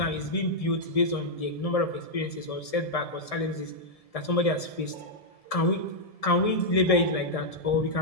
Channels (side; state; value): right; late; 1.7 ms